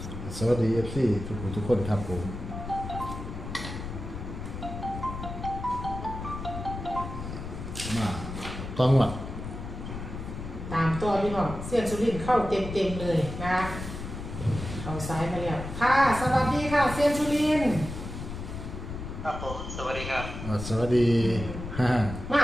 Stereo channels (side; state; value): left; noise; rumble, 8 dB below the sound